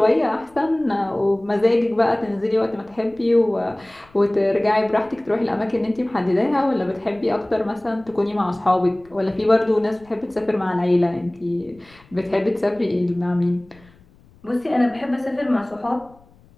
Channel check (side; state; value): left; noise; rumble, 28 dB below the sound